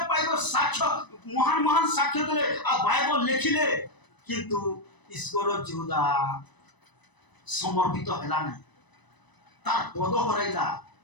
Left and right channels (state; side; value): late; right; 1.0 ms